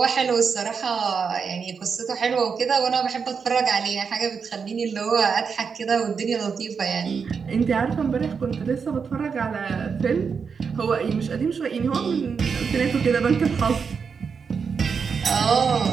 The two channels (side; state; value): left; quieter; 5.9 dB